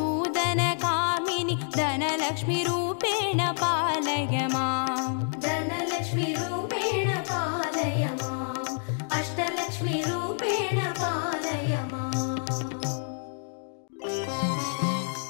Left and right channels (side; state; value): right; silent; digital silence